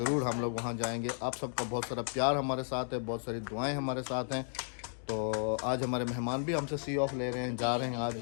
हम लोग वहाँ जाएंगे। आप सबका बहुत सारा प्यार हमारे साथ है, बहुत सारी दुआएं हमारे साथ हैं। तो आज हमारे मेहमान भी हमसे सी ऑफ ले रहे हैं, जा रहे हैं, आज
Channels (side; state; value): right; silent; digital silence